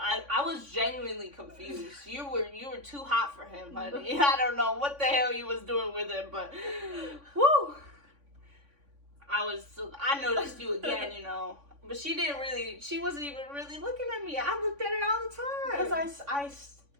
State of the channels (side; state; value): left; late; 3.5 ms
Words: was genuinely confused. You were too hot for him, honey. I don't know what the hell you was doing with him, but whoo. I noticed you again, you know. But she wasn't even really looking at me. I looked at her all the time. Because